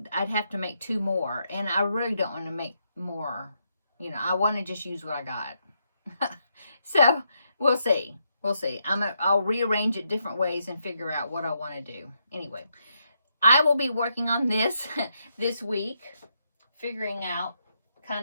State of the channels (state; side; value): inverted; both; correlation -0.79